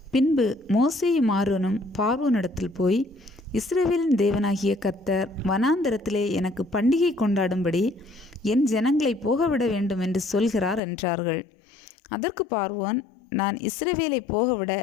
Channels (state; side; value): drops out; right; at 10.8 s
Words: பின்பு மோசேயும் ஆரோனும் பார்வோனிடத்தில் போய், இஸ்ரவேலின் தேவனாகிய கர்த்தர் வனாந்தரத்திலே எனக்கு பண்டிகை கொண்டாடும்படி என் ஜனங்களை போகவிட வேண்டும் என்று சொல்கிறார் என்றார்கள். அதற்கு பார்வோன், நான் இஸ்ரவேலை போகவிட